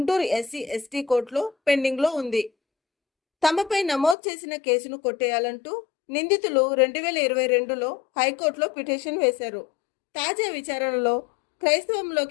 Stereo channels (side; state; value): right; drops out; at 4.2 s